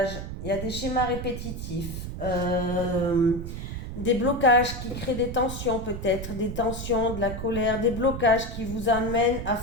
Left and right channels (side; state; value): right; noise; rumble, 7 dB below the sound